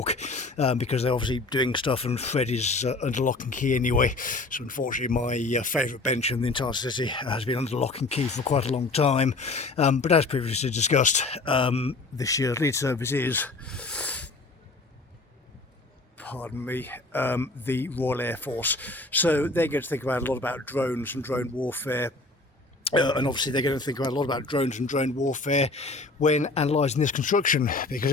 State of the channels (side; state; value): right; quieter; 3.3 dB